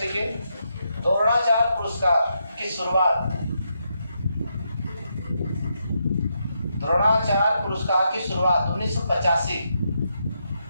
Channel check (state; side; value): inverted; both; correlation -0.81